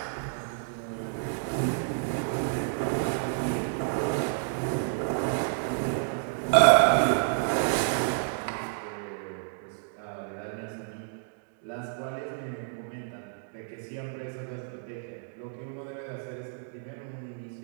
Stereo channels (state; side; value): silent; left; digital silence